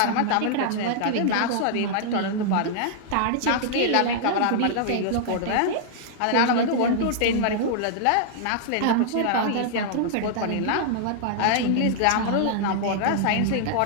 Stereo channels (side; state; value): both; different; correlation -0.01